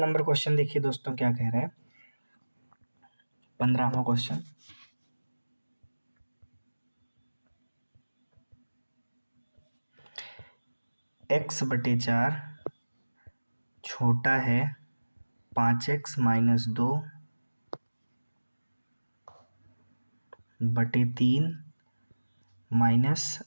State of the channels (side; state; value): both; inverted; correlation -1.00